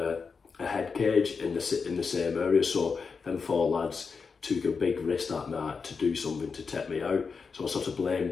head cage in the same area. So them 4 lads took a big risk that night to do something to take me out. So I sort of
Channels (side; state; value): right; quieter; 5.2 dB